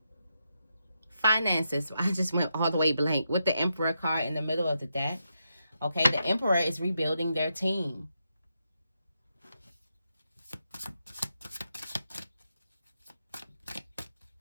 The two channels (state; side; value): inverted; both; correlation -0.83